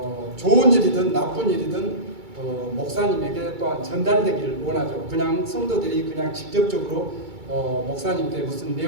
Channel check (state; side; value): late; left; 2.3 ms